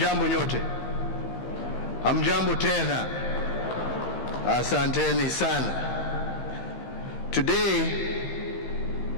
nyote. Hamjambo tena. Asanteni sana. Today,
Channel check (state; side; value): late; right; 15 ms